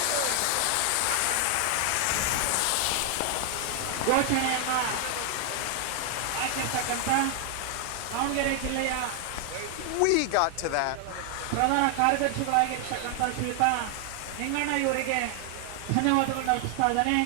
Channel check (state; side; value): different; both; correlation 0.00